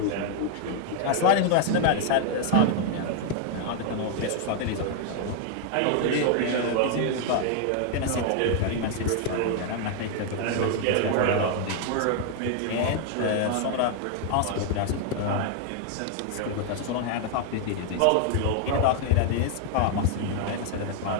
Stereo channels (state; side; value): different; both; correlation 0.00